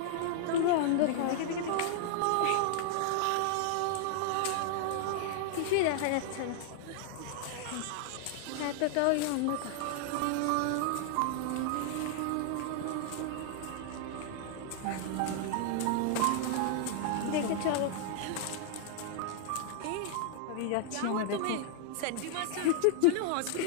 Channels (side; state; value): both; different; correlation -0.01